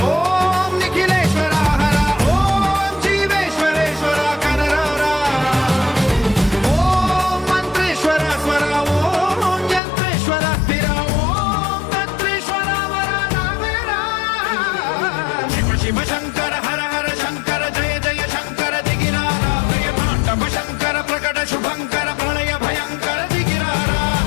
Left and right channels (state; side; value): drops out; right; at 9.8 s